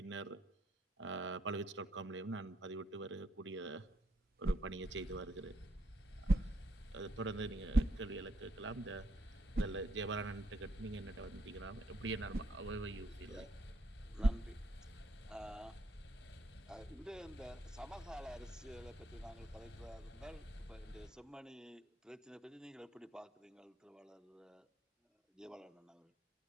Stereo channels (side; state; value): both; normal; correlation 0.73